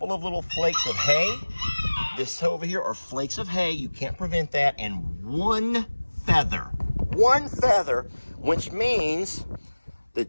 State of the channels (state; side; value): inverted; both; correlation -1.00